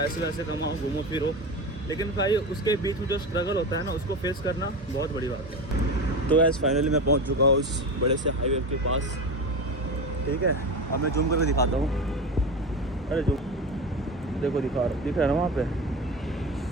वैसे कमाओ, घूमो फिरो, लेकिन भाई उसके बीच में जो स्ट्रगल होता है ना, उसको फेस करना बहुत बड़ी बात है। तो ऐसे फाइनली मैं पहुंच चुका हूँ उस बड़े से हाईवे के पास, ठीक है। अब मैं जूम करके दिखाता हूँ। अरे जो देखो दिख रहा है ना वहाँ पे,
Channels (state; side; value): normal; both; correlation 0.24